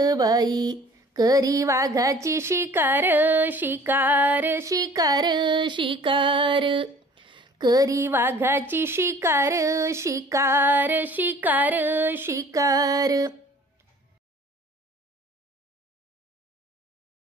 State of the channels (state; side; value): normal; both; correlation 0.50